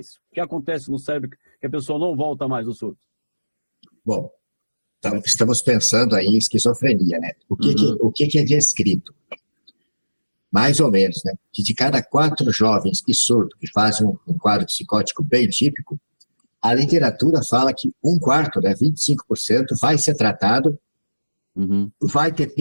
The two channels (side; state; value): both; inverted; correlation -1.00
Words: O que acontece no cérebro que a pessoa não volta mais do surto? Bom, então estamos pensando aí em esquizofrenia, né? O que é descrito? Mais ou menos, né? Que de cada 4 jovens que surtam, que fazem um quadro psicótico bem típico, a literatura fala que 1/4, né, 25%, vai ser tratado, vai ter